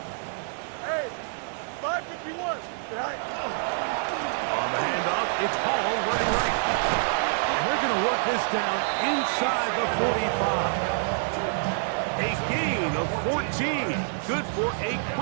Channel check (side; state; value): left; silent; 60 dB below the other